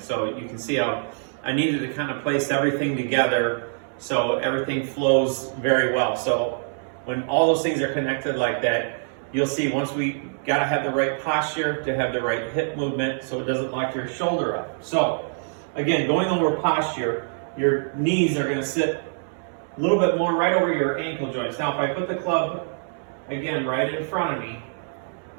you can see how I needed to kind of place everything together so everything flows very well. So when all those things are connected like that, you'll see once we got to have the right posture to have the right hip movement so it doesn't lock your shoulder up. So again, going over posture, your knees are going to sit a little bit more right over your ankle joints. Now, if I put the club, again, right in front of me,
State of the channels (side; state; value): left; silent; digital silence